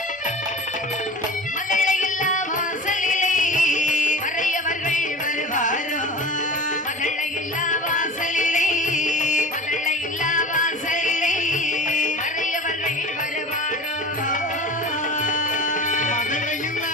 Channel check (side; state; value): both; normal; correlation 0.36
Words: மகளை இல்லா வாசலிலே மறையவர்கள் வருவாரோ. மகளை இல்லா வாசலிலே, மகளை இல்லா வாசலிலே மறையவர்கள் வருவாரோ.